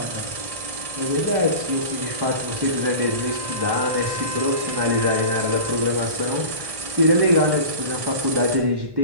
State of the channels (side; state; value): left; late; 1.6 ms